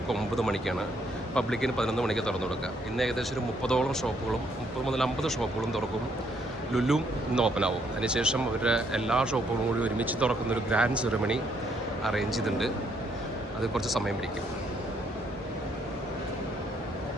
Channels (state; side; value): normal; both; correlation 0.71